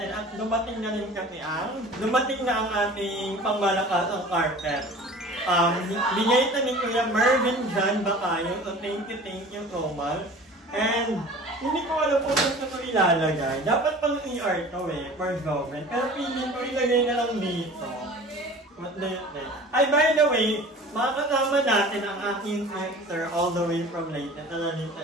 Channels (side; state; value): both; normal; correlation 0.42